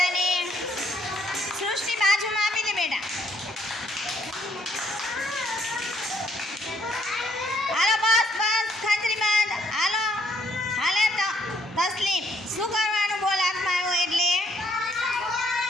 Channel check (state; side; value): normal; both; correlation 0.68